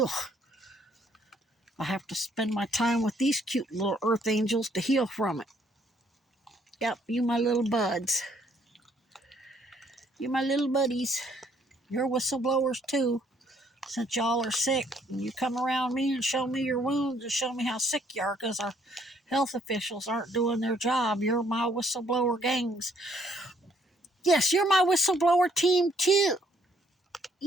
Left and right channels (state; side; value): normal; both; correlation 0.66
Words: I have to spend my time with these cute little earth angels to heal from it. Yep, you my little buds. You my little buddies. You're whistleblowers too. Since y'all are sick, and you come around me and show me your wounds and show me how sick you are because our health officials aren't doing their job. You're my whistleblower gangs. Yes, you're my whistleblower team too.